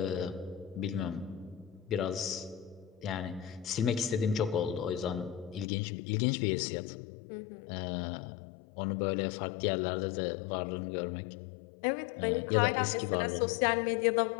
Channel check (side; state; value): right; drops out; at 5.7 s